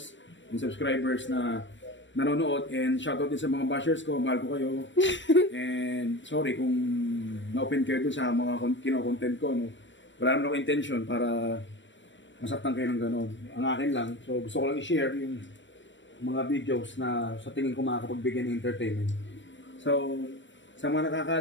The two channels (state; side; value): late; right; 0.54 ms